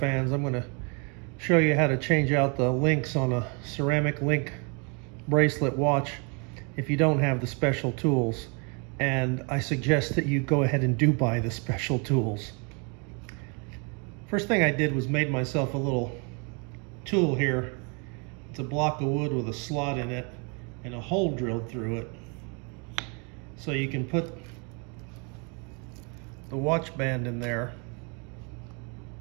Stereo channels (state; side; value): quieter; left; 34.3 dB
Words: I'm going to show you how to change out the links on a ceramic link bracelet watch if you don't have the special tools. And I suggest that you go ahead and do buy the special tools. First thing I did was made myself a little tool here. It's a block of wood with a slot in it and a hole drilled through it. So you can put the watch band in there